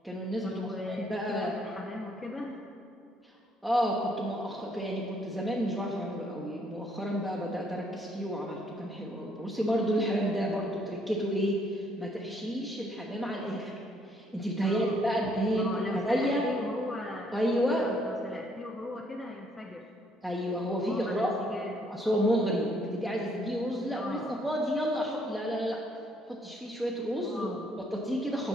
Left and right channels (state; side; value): normal; both; correlation 0.68